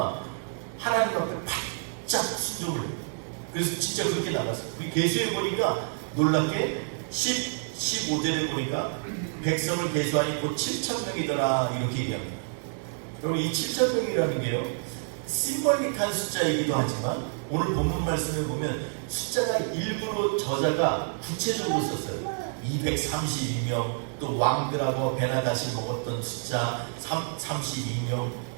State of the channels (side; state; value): left; silent; 59 dB below the other